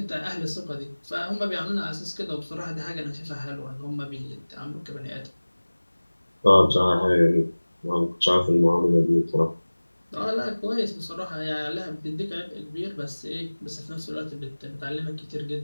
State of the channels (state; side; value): inverted; both; correlation -1.00